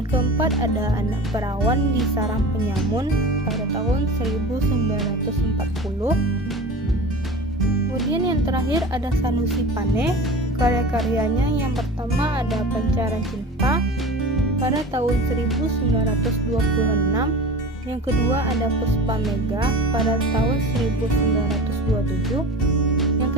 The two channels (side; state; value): both; normal; correlation 0.34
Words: keempat ada Anak Perawan di Sarang Penyamun pada tahun 1940. Kemudian yang terakhir ada Sanusi Pane. Karya-karyanya yang pertama ada Pancaran Cinta pada tahun 1926. Yang kedua ada Puspa Mega pada tahun 1927.